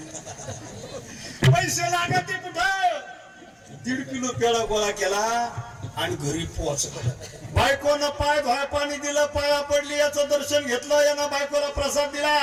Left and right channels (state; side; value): identical; both; correlation 1.00